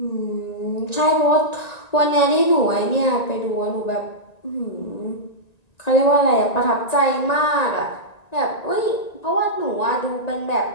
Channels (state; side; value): late; right; 1.9 ms